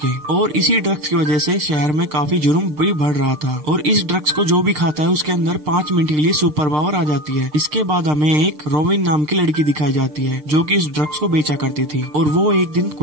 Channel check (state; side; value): late; left; 6.6 ms